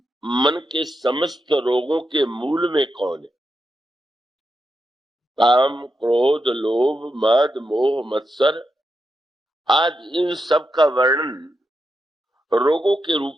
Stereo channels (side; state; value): both; normal; correlation 0.86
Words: मन के समस्त रोगों के मूल में कौन है, काम क्रोध लोभ मद मोह मत्सर, आज इन सब का वर्णन रोगों के